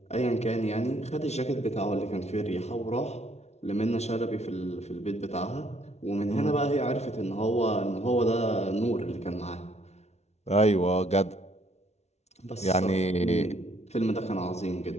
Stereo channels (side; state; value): right; late; 0.31 ms